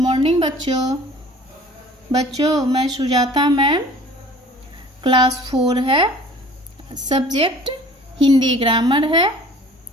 बच्चों मैं Sujata ma'am. Class 4 है, सब्जेक्ट हिंदी ग्रामर है,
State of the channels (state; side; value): normal; both; correlation 0.48